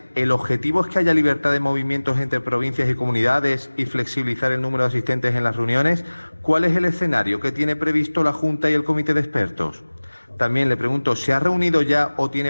¿el objetivo es que haya libertad de movimientos entre provincias y comunidades y flexibilizar el número de asistentes en las reuniones? ¿Cuál es el escenario que tiene previsto la Junta y el Comité de Expertos? También le pregunto, ¿se ha reunido ya o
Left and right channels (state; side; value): inverted; both; correlation -1.00